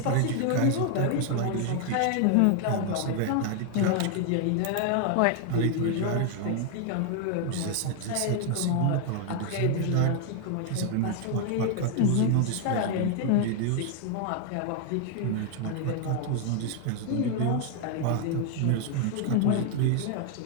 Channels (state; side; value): different; both; correlation 0.00